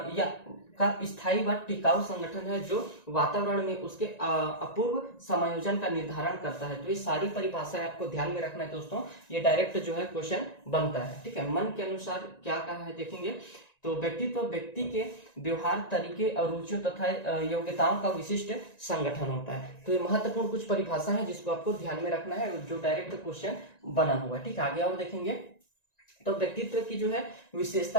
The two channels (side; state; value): right; late; 1.9 ms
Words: या का स्थायी व टिकाऊ संगठन है जो वातावरण में उसके अपूर्व समायोजन का निर्धारण करता है। तो ये सारी परिभाषाएं आपको ध्यान में रखना है दोस्तों, ये डायरेक्ट जो है क्वेश्चन बनता है। ठीक है, मन के अनुसार क्या कहा है देखेंगे। तो व्यक्तित्व व्यक्ति के व्यवहार, तरीके और रुचियों तथा योग्यताओं का विशिष्ट संगठन होता है। तो ये महत्वपूर्ण कुछ परिभाषा है जिसको आपको ध्यान में रखना है, जो डायरेक्ट क्वेश्चन बना हुआ है। ठीक है, आगे और देखेंगे तो व्यक्तित्व की जो है